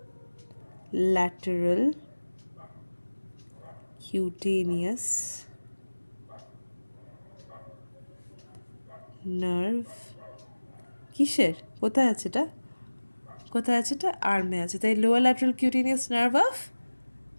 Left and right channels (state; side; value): inverted; both; correlation -1.00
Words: lateral cutaneous nerve কিসের? কোথায় আছে এটা? কোথায় আছে এটা? আর্মে আছে, তাই lower lateral cutaneous nerve of